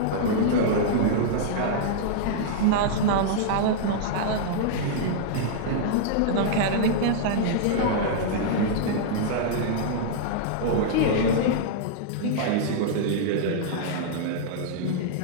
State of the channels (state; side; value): different; both; correlation -0.02